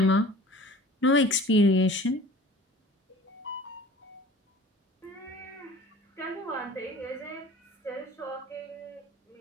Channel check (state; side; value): normal; both; correlation 0.44